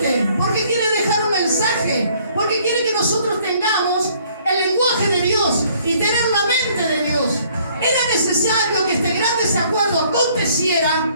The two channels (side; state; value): both; inverted; correlation -0.61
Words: porque quiere dejar un mensaje, porque quiere que nosotros tengamos el lenguaje de Dios y tener la mente de Dios. Era necesario que este gran desacuerdo aconteciera